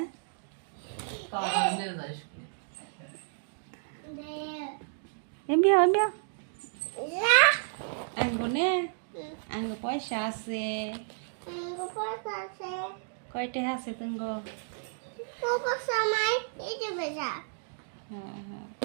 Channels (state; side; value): silent; left; digital silence